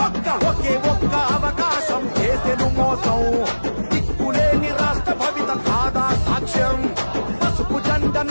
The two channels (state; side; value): inverted; both; correlation -1.00